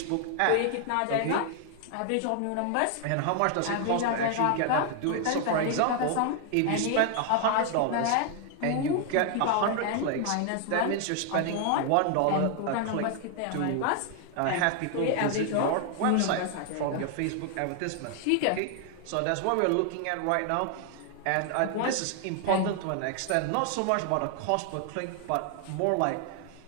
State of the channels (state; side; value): different; both; correlation 0.00